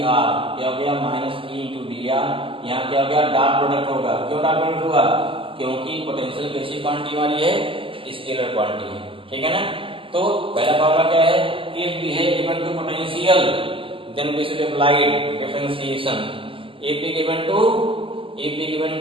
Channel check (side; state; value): left; late; 0.25 ms